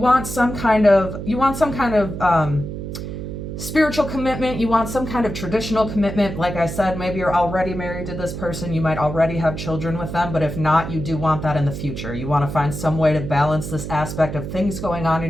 some kind of spiritual commitment. You want some kind of traditional commitment. Like I said, maybe you're already married to this person. You might already have children with them, but if not, you do want that in the future. You want to find some way to balance this aspect of things going on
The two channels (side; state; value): right; noise; hum, 7 dB below the sound